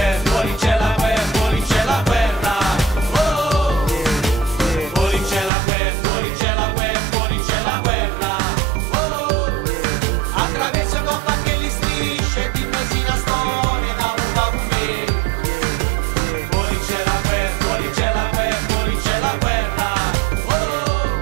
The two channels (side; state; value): left; drops out; at 5.5 s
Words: fuori c'è la guerra, fuori c'è la guerra. Oh, fuori c'è la guerra, fuori c'è la guerra, fuori c'è la guerra. Oh, attraverso coppa che li strisce, dimmi sì la storia da un po' me. Fuori c'è la guerra, fuori c'è la guerra, fuori c'è la guerra.